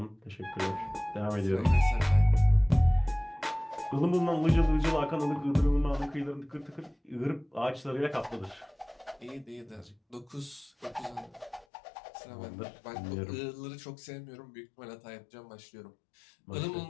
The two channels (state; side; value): drops out; right; at 11.7 s